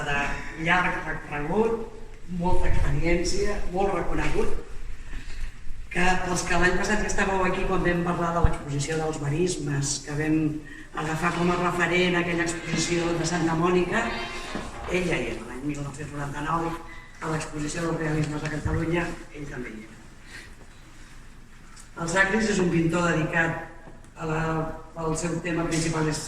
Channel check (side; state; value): both; identical; correlation 1.00